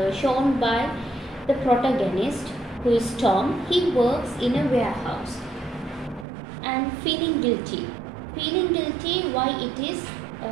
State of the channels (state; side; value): drops out; left; at 6.2 s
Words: shown by the protagonist, who is Tom. He works in a warehouse and feeling guilty. Why it is?